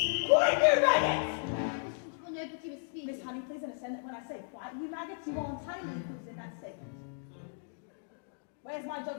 Quiet, you maggots! Well, nobody was speaking. Miss Honey, please understand that when I say quiet, you maggots, you are entirely included in that statement. Where's my jug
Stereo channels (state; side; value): silent; right; digital silence